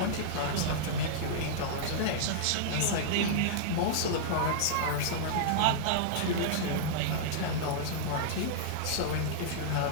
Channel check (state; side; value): different; both; correlation -0.02